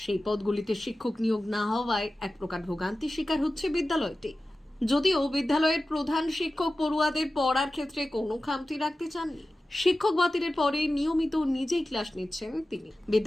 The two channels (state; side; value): normal; both; correlation 0.95